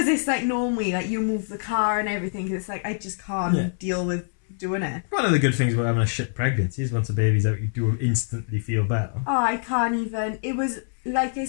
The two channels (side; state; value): right; silent; 62 dB below the other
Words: it's like normally like you move the car and everything. Cause it's like I just can't deal with doing it. One of the good things about having a shit pregnancy is once the baby's out, you do instantly feel better. Oh, I can't even. It was like I